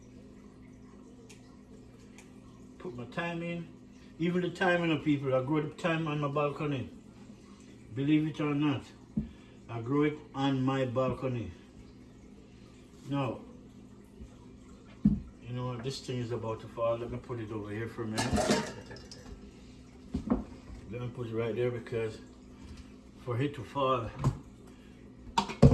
Put my thyme in. Even the thyme, you know, people, I grow the thyme on my balcony. Believe it or not, I grow it on my balcony. Now, you know what, this thing is about to fall. Let me put it over here for a minute. Let me put it right there because for it to fall,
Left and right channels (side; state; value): both; identical; correlation 1.00